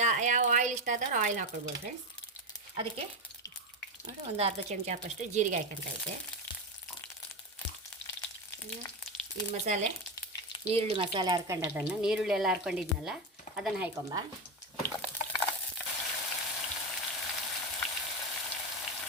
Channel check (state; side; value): normal; both; correlation 0.14